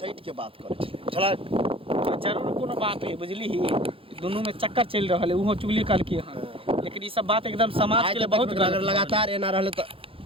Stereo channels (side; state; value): left; late; 0.27 ms